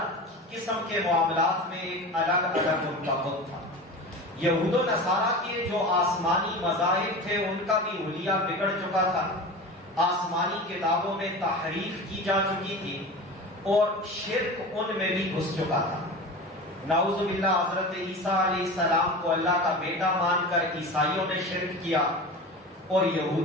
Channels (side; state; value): both; normal; correlation 0.31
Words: قسم کے معاملات میں ایک الگ الگ ان کا بت تھا۔ یہود و نصارہ کے جو آسمانی مذاہب تھے ان کا بھی حلیہ بگڑ چکا تھا، آسمانی کتابوں میں تحریف کی جا چکی تھی اور شرک ان میں بھی گھس چکا تھا۔ نعوذ باللہ حضرت عیسیٰ علیہ السلام کو اللہ کا بیٹا مان کر عیسائیوں نے شرک کیا اور